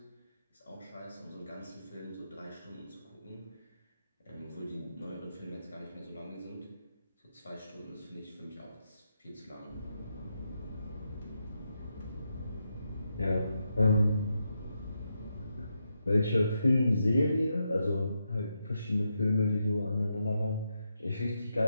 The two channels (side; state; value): both; inverted; correlation -0.84